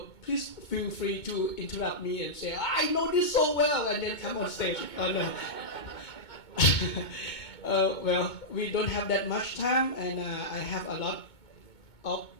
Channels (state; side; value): late; right; 2.2 ms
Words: please feel free to interrupt me and say, I know this so well, and then come on stage. Oh, no. Well, we don't have that much time, and I have a lot of